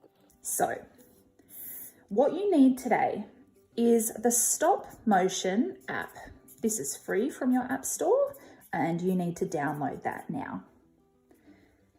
So, what you need today is the stop motion app. This is free from your app store and you need to download that now.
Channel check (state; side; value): identical; both; correlation 1.00